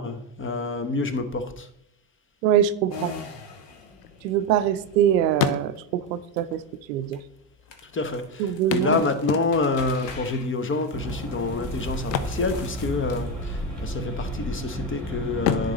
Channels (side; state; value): both; normal; correlation 0.11